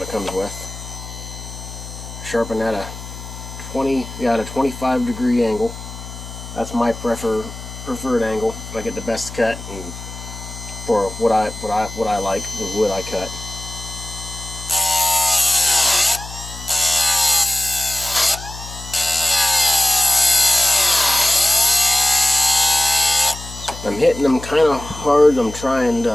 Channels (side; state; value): left; noise; hum, 12 dB below the sound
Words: it comes with. Sharpen at a 25-degree angle. That's my preferred angle. I get the best cut and for what I like, the wood I cut. I'm hitting them kind of hard. I'm trying